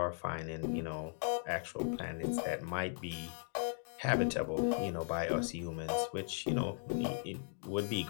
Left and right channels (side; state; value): right; silent; 53 dB below the other